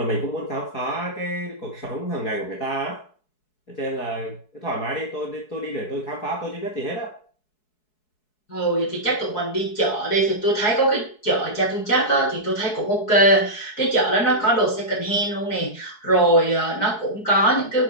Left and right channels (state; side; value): late; right; 4.7 ms